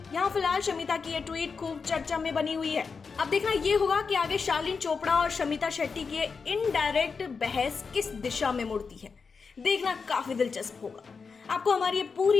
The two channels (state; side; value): quieter; right; 5.1 dB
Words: यहाँ फिलहाल शमिता की ये ट्वीट खूब चर्चा में बनी हुई है। अब देखना ये होगा कि आगे शालीन चोपड़ा और शमिता शेट्टी की इनडायरेक्ट बहस किस दिशा में मुड़ती है। देखना काफी दिलचस्प होगा। आपको हमारी ये